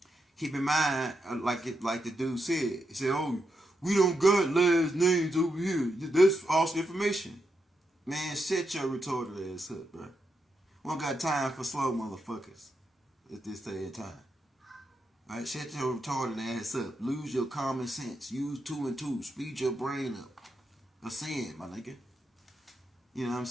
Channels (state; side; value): normal; both; correlation 0.84